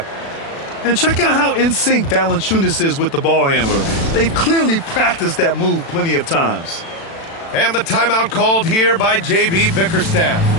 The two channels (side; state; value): right; late; 36 ms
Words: And check out how in sync Valanciunas is with the ball handler. They've clearly practiced that move plenty of times. And the timeout called here by J.B. Bickerstaff.